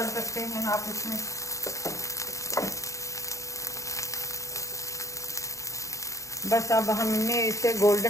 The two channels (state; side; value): late; right; 0.15 ms